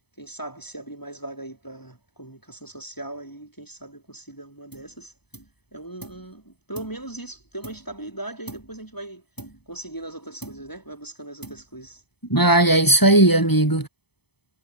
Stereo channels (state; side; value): late; right; 0.98 ms